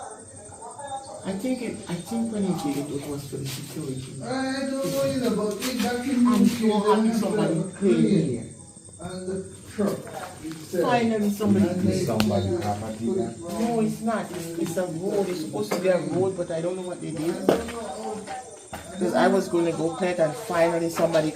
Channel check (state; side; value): identical; both; correlation 1.00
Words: I think when he did it, it was for the security. I don't know, you know, but we back in I'm so happy somebody prayed here. and the truck. Finally somebody prayed. Somebody property there. No, it's not. It's a road. It's supposed to be a road, but I don't know what they did. Because I was going to go clear it and finally somebody